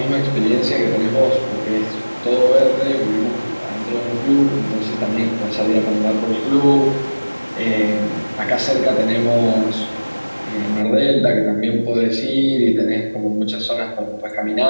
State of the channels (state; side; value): inverted; both; correlation -1.00